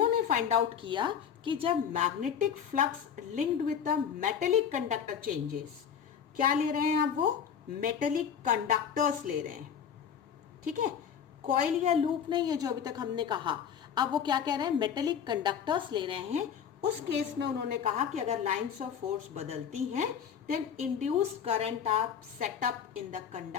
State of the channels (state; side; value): quieter; right; 7.9 dB